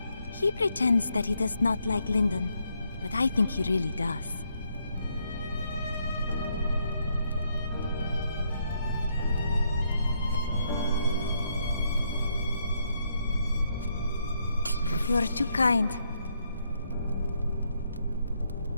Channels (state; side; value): inverted; both; correlation -0.75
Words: He pretends that he does not like Lyndon, but I think he really does. You are too kind.